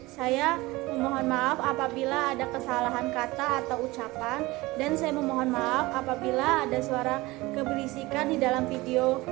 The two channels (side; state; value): left; quieter; 20.8 dB